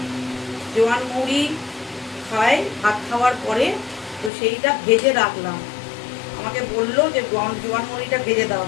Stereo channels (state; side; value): drops out; right; at 4.3 s